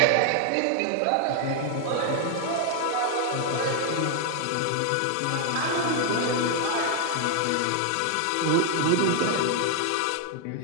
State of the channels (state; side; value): different; both; correlation 0.00